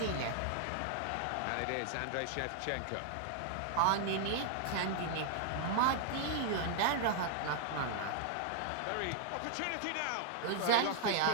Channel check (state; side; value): different; both; correlation -0.01